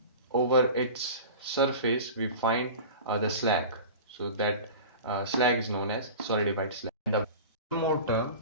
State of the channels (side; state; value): both; inverted; correlation -0.35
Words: over its surface we find the slag. So that slag is known as solidified slag. And the one more term,